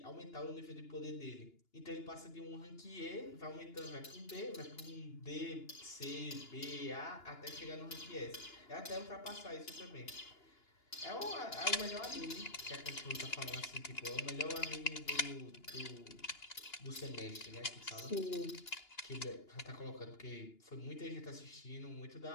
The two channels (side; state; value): right; late; 2.9 ms